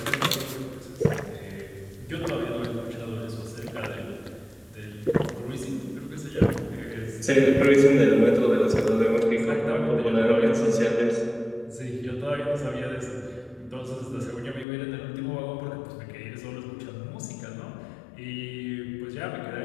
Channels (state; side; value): drops out; right; at 14.7 s